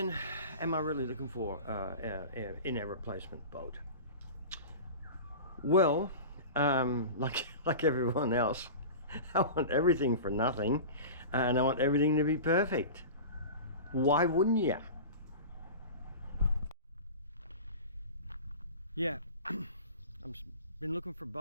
am I really looking for in a replacement boat? Well, like everyone else, I want everything for nothing, and I want everything to be perfect. Why wouldn't you? Yeah, I've been looking for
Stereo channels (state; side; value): inverted; both; correlation -0.33